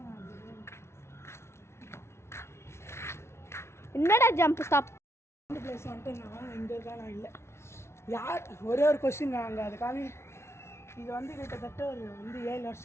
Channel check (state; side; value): late; right; 0.13 ms